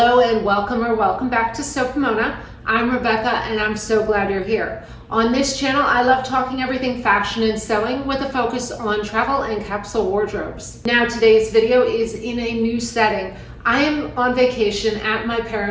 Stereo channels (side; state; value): both; identical; correlation 1.00